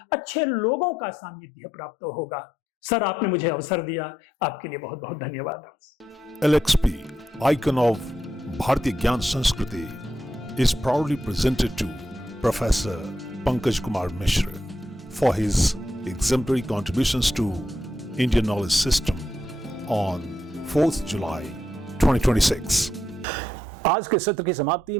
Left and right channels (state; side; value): normal; both; correlation 0.82